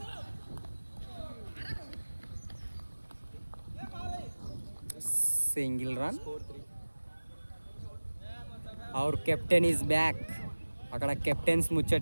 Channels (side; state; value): both; inverted; correlation -1.00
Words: Single run. Our captain is back. అక్కడ captains